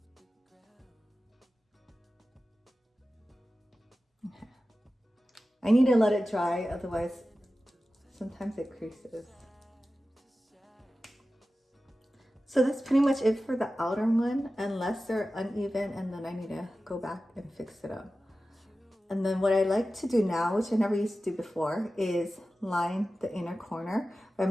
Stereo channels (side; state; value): both; normal; correlation 0.94